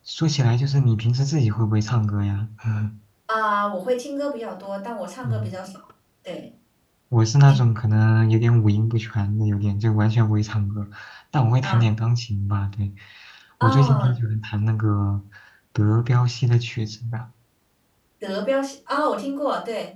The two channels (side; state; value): both; identical; correlation 1.00